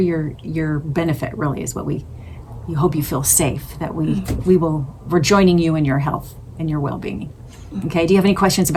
benefit, really, is what we hope you feel safe, that we're joining you in your health and your well-being. Okay, do you have any questions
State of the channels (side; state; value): both; identical; correlation 1.00